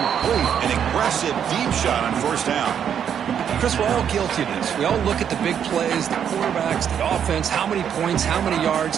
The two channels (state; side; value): quieter; left; 8.5 dB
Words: An aggressive deep shot on first down. Chris, we're all guilty of this. We all look at the big plays, the quarterbacks, the offense, how many points, how many